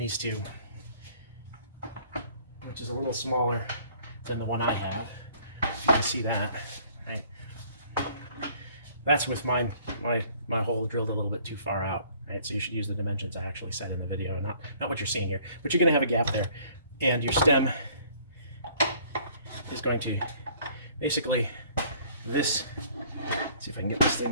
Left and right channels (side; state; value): both; inverted; correlation -0.57